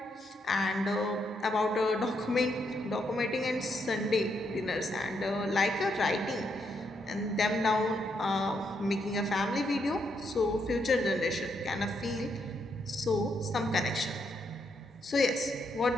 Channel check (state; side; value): normal; both; correlation 0.78